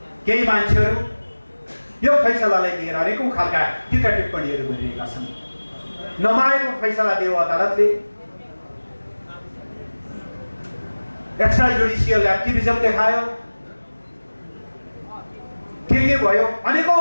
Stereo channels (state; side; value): inverted; both; correlation -1.00